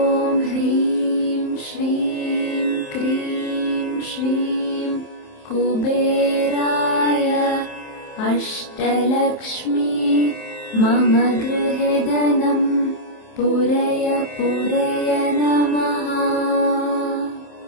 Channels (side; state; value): right; late; 27 ms